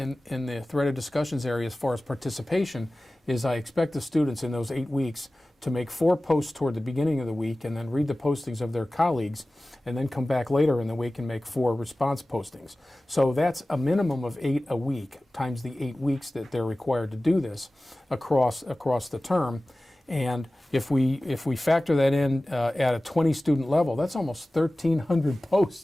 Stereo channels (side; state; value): both; normal; correlation 0.97